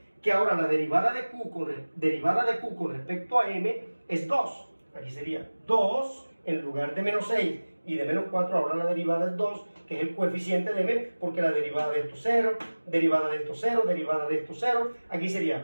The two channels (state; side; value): inverted; both; correlation -1.00